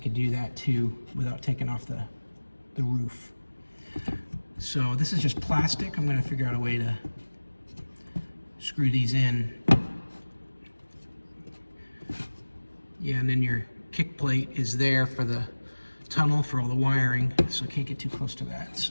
do that too without taking off the roof. So this is just plastic. I'm going to figure out a way to screw these in. Yeah, and then your kick plate is there for the tunnel for all the wiring, so I can't get too close to that.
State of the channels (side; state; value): both; inverted; correlation -1.00